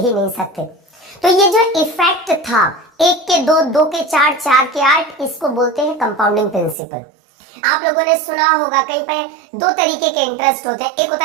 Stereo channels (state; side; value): drops out; left; at 6.8 s